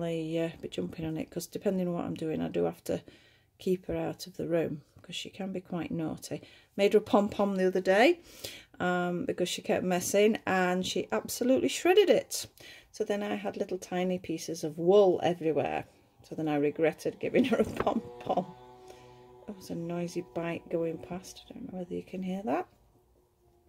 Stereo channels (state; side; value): identical; both; correlation 1.00